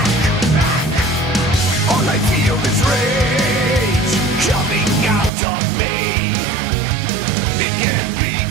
All I feel is rage coming out of me. It can't be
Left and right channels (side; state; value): left; drops out; at 5.3 s